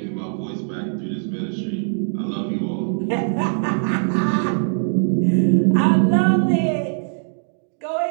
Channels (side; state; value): left; silent; digital silence